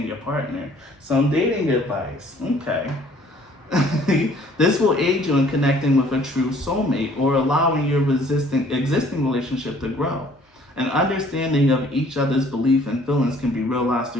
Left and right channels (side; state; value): both; normal; correlation 0.57